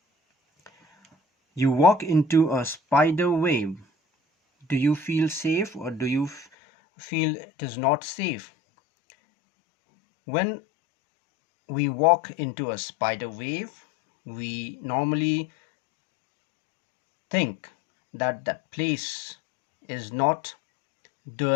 You walk into a spider web. Do you feel safe or do you feel it is not safe? When we walk into a spider web, we normally think that that place is not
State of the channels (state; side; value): drops out; right; at 6.5 s